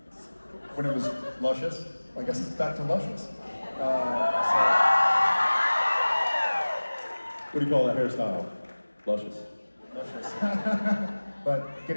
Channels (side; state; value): both; inverted; correlation -1.00